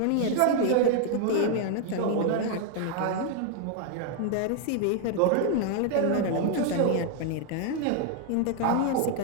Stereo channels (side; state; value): both; different; correlation 0.00